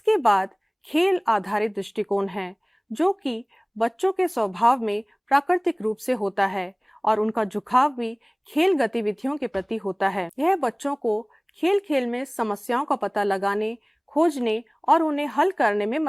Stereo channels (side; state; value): both; identical; correlation 1.00